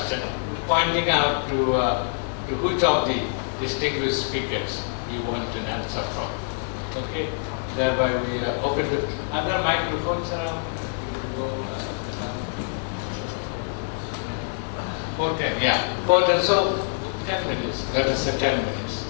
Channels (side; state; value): right; silent; 61 dB below the other